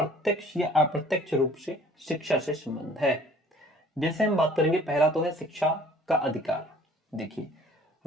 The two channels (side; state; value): both; normal; correlation 0.53